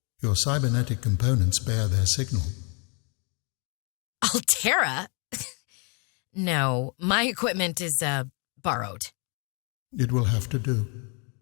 Your cybernetic components bear their signal. Alterra? No, my equipment is, borrowed. It will have to do.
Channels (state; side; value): quieter; right; 35.9 dB